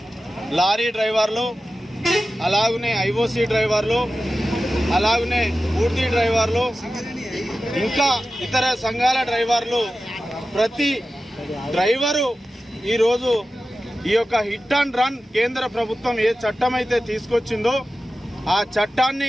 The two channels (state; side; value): normal; both; correlation 0.94